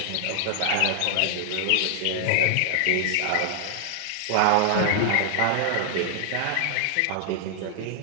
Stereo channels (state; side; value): different; both; correlation 0.00